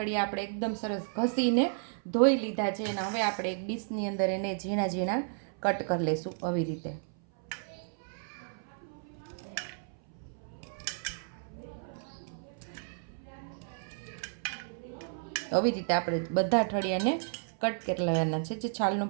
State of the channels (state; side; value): silent; left; 56 dB below the other